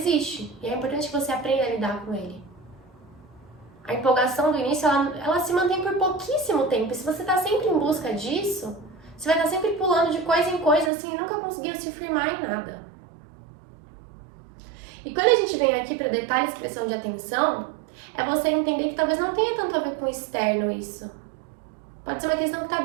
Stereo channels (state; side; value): drops out; left; at 10.9 s